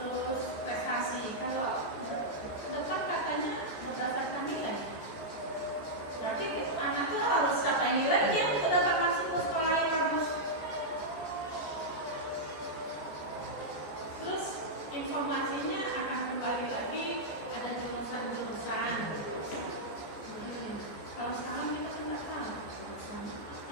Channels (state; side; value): late; right; 14 ms